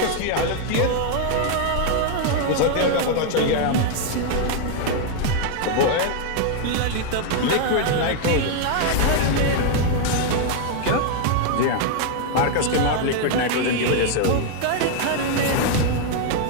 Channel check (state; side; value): different; both; correlation 0.00